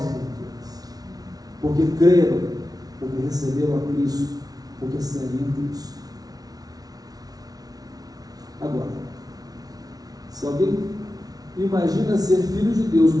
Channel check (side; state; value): left; late; 0.18 ms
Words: criaturas, porque creram, porque receberam a Cristo, porque seguem em Cristo. Agora, se alguém imagina ser filho de Deus,